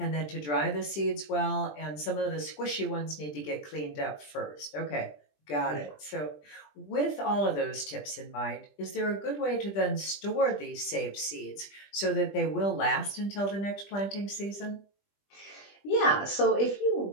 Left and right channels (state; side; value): late; right; 20 ms